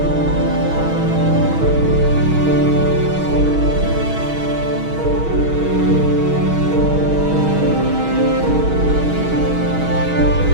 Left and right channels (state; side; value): late; left; 6.3 ms